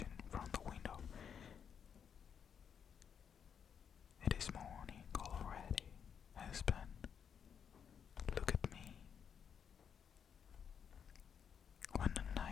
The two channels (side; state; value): right; quieter; 7.5 dB